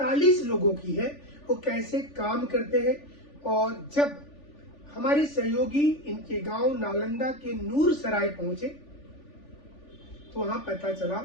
लोगों की है वो कैसे काम करते हैं। और जब हमारे सहयोगी इनके गांव नालंदा के नूरसराय पहुंचे तो वहां पता चला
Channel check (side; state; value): right; late; 3.4 ms